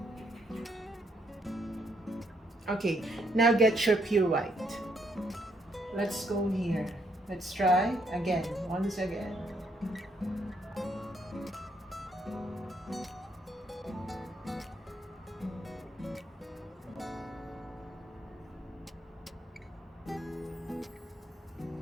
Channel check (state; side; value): normal; both; correlation 0.73